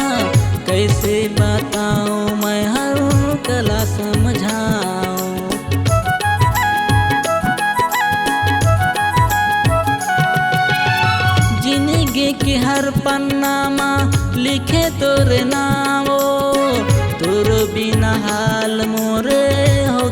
कैसे बताऊं मैं हर कला समझाऊं। जिंदगी के हर पन्ना में लिखे तोरे नामो, तोर बिना हाल मोरे हो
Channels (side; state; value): both; identical; correlation 1.00